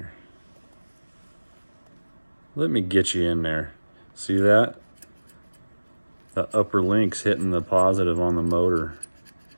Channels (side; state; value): both; inverted; correlation -1.00